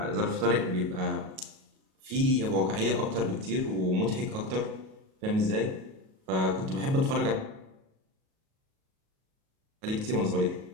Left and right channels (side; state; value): left; late; 37 ms